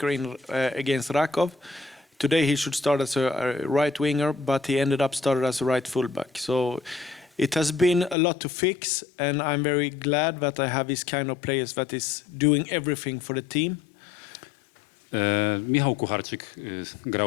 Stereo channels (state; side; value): drops out; right; at 8.2 s